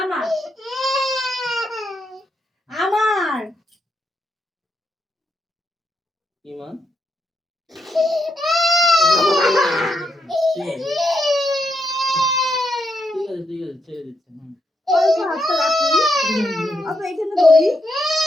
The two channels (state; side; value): normal; both; correlation 0.81